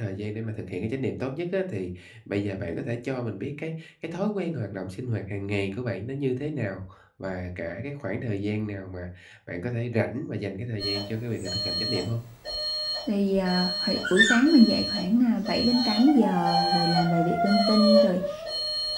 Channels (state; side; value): identical; both; correlation 1.00